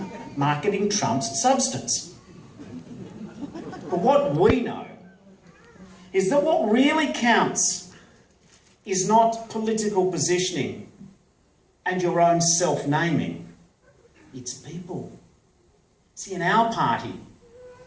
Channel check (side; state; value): both; identical; correlation 1.00